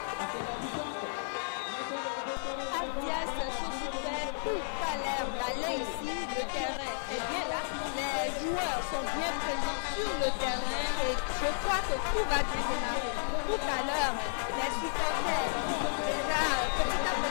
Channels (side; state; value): right; silent; digital silence